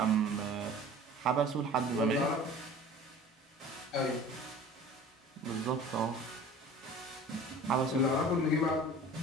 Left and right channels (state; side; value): normal; both; correlation 0.43